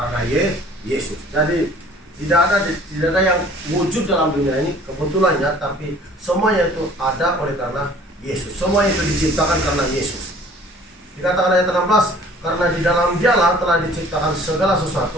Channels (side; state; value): both; normal; correlation 0.52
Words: Yesus. Jadi tidak ada yang wujud dalam dunia ini kebetulannya, tapi semuanya itu ada oleh karena Yesus. Semua itu diciptakan karena Yesus. Dikatakan ayat 16, karena di dalam Dialah telah diciptakan segala